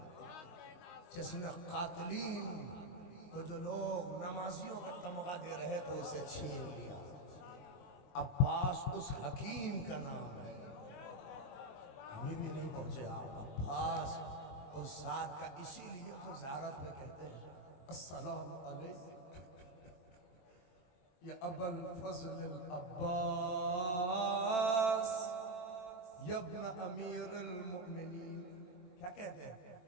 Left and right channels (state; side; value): late; right; 22 ms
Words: جس نے قاتلین کو جو لوگ نمازیوں کا تمغہ دے رہے تو اسے چھین لیا. عباس اس حکیم کا نام ہے. ابھی بھی نہیں پہنچے آپ. عباس اس ذات کا، اسی لیے تو زیارت میں کہتے ہیں السلام علیکم یا ابا الفضل العباس یا ابن امیر المؤمنین. کیا کہتے ہیں؟